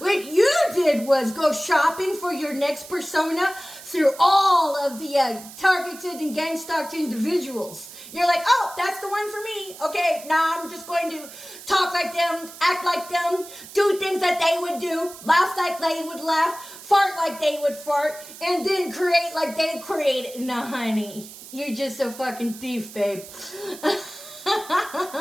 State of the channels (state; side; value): noise; right; hiss, 16 dB below the sound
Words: you did was go shopping for your next persona through all of the targeted and gang-stalked individuals. You're like, oh, that's the one for me. Okay, now I'm just going to talk like them, act like them, do things that they would do, laugh like they would laugh, fart like they would fart, and then create like they created. Nah, honey, you're just a fucking thief, babe.